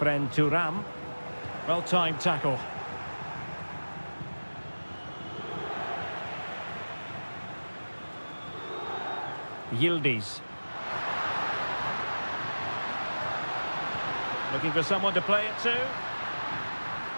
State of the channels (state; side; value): inverted; both; correlation -1.00